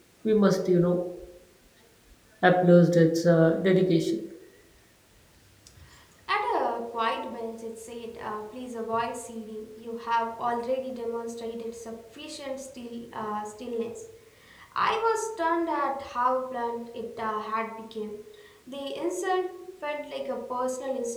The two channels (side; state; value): both; identical; correlation 1.00